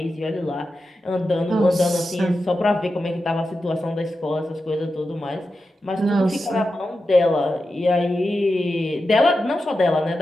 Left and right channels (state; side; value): normal; both; correlation 0.90